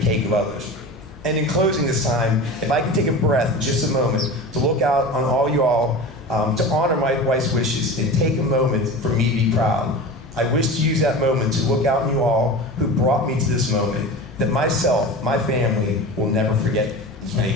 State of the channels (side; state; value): both; normal; correlation 0.32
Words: cake of others. And in closing this time, if I can take a breath just a moment to look out on all you all, to honor my wife's wishes and take a moment for me to be proud. I wish to use that moment to look out on you all who brought me to this moment, that myself, my family, will never forget.